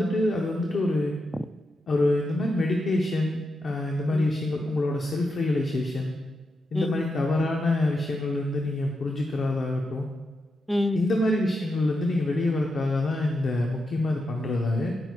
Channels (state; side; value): normal; both; correlation 0.86